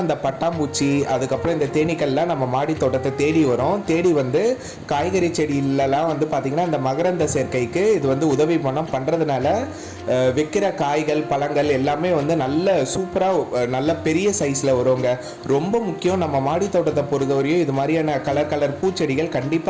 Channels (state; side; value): identical; both; correlation 1.00